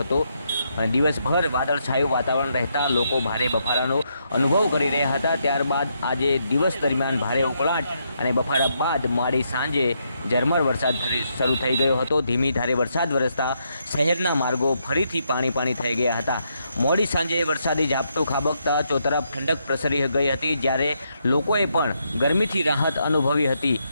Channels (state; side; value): inverted; both; correlation -0.78